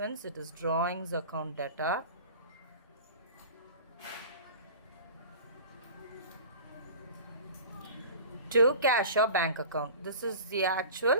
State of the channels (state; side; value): inverted; both; correlation -0.39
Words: it is drawings account data. To cash or bank account. This is the